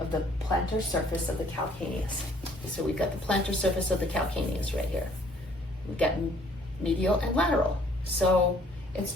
the plantar surface of the calcaneus. So we've got the plantar surface of the calcaneus right here. We've got medial and lateral. So it's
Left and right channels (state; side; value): normal; both; correlation 0.60